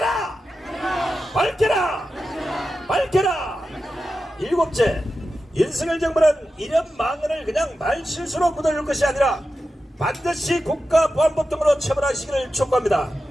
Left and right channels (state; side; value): normal; both; correlation 0.91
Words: 밝혀라! 밝혀라! 일곱째, 윤석열 정부는 이런 망언을 그냥 말실수로 묻어줄 것이 아니라 반드시 국가보안법 등으로 처벌하시기를 촉구합니다.